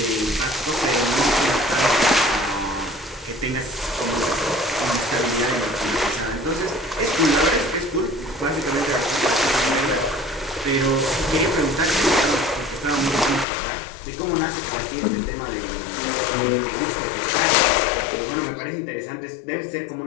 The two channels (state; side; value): drops out; right; at 13.5 s